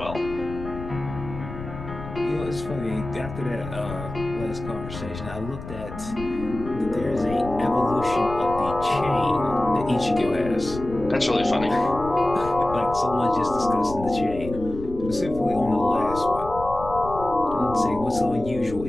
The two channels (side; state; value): left; noise; rumble, 11 dB below the sound